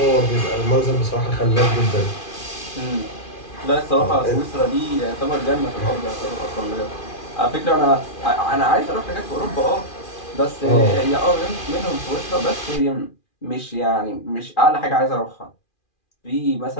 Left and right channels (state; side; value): late; right; 2.4 ms